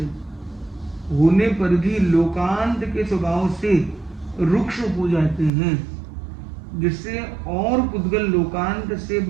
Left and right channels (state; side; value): drops out; left; at 5.5 s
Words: होने पर भी लोकांत के स्वभाव से रुक्ष हो जाते हैं, जिससे और पुद्गल लोकांत से